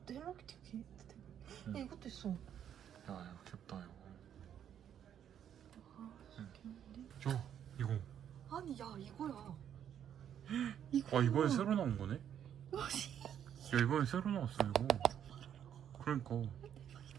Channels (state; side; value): quieter; left; 9.5 dB